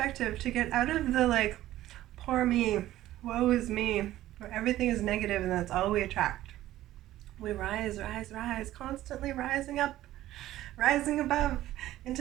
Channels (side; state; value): left; quieter; 14.5 dB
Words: to get out of the like, poor me, woe is me, where everything is negative and that's all we attract. We rise, constantly rising up, rising above